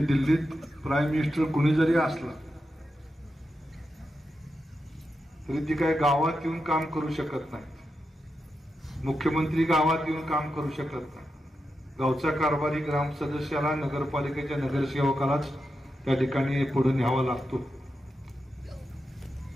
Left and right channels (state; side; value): normal; both; correlation 0.88